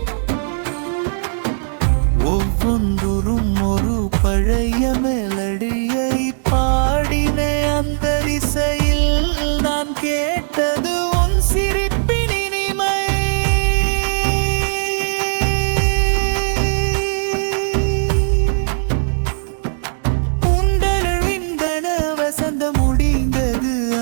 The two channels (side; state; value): left; silent; digital silence